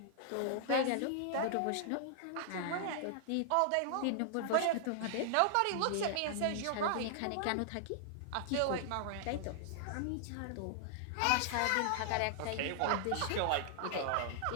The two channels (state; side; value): different; both; correlation -0.01